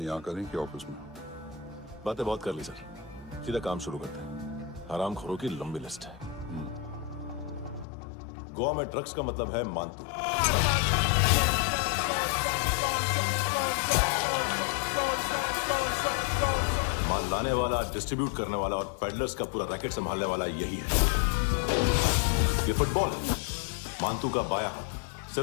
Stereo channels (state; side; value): drops out; right; at 7.9 s